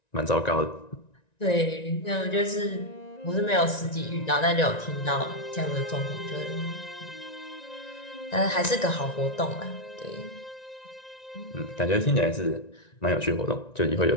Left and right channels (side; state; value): right; late; 1.9 ms